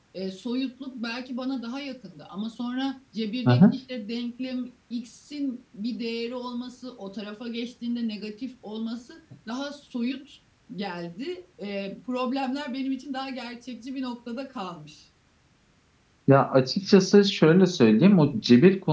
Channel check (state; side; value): identical; both; correlation 1.00